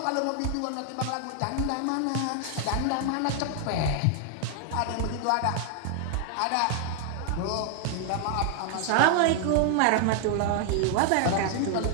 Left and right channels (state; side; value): different; both; correlation 0.00